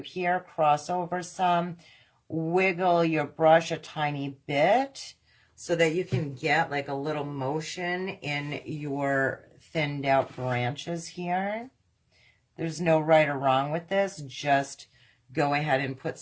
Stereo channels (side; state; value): both; identical; correlation 1.00